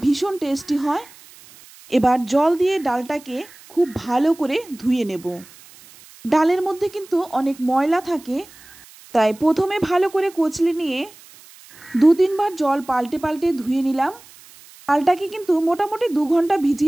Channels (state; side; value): noise; right; hiss, 23 dB below the sound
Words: ভীষণ টেস্টি হয়। এবার জল দিয়ে ডালটাকে খুব ভালো করে ধুয়ে নেব। ডালের মধ্যে কিন্তু অনেক ময়লা থাকে, তাই প্রথমে ভালো করে কচলে নিয়ে 2-3 বার জল পাল্টে পাল্টে ধুয়ে নিলাম। ডালটাকে কিন্তু মোটামুটি 2 ঘন্টা